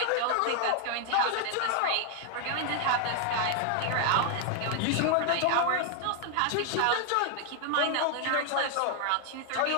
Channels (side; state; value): both; different; correlation 0.00